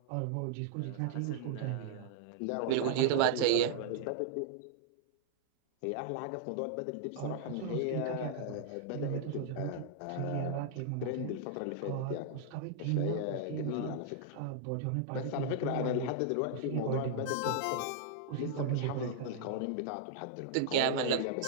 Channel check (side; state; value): both; different; correlation -0.01